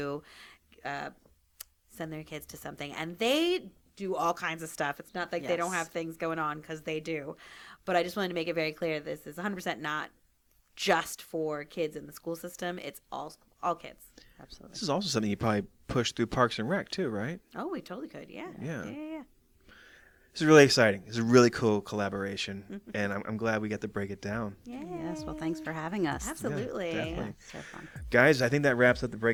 send their kids to something. And they do all kinds of stuff. It's not like they don't Yes. have things going on, because they do. But I just wanted to make it very clear this is 100% not just for kids in the school system. It's all kids. Absolutely. This is also something you probably push through Parks and Rec too, right? Oh, we totally could. Yeah. Yeah. This is really exciting. It's a really cool collaboration, and I'm glad we got to break it down. Yes. Well, thanks for having us. Absolutely. Yeah, definitely. So fun. Guys, I think that wraps up the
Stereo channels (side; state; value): both; identical; correlation 1.00